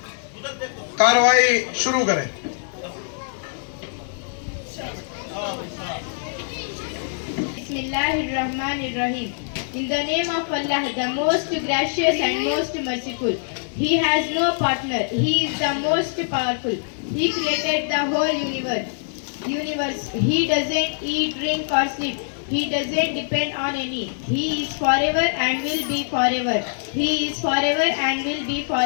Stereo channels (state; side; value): silent; right; digital silence